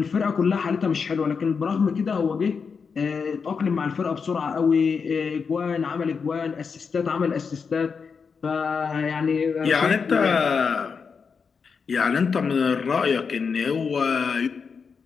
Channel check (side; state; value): right; quieter; 5.7 dB